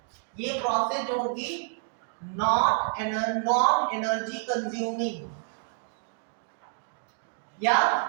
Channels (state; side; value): silent; left; 59 dB below the other